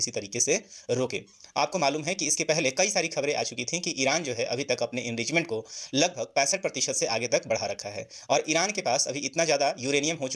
तरीके से रोके। आपको मालूम है कि इसके पहले कई सारी खबरें आ चुकी थी कि ईरान जो है अभी तक अपने इनरिचमेंट को लगभग 65% से आगे तक बढ़ा रखा है और ईरान के पास अभी इतना ज़्यादा यूरेनियम हो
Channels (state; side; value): identical; both; correlation 1.00